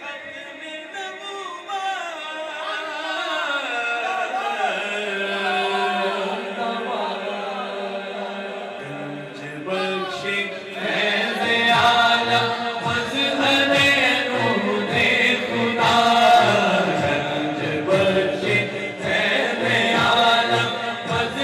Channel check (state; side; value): identical; both; correlation 1.00